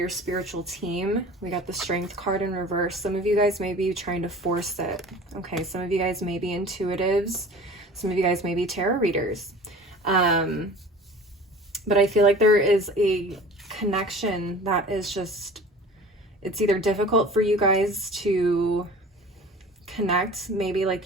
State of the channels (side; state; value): both; normal; correlation 0.42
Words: spiritual team. We got the Strength card in reverse. Some of you guys may be trying to force it. Okay, some of you guys may be intuitives. Some of you guys may be tarot readers. But I feel like there is a connection that is just, it's either difficult for you guys to connect maybe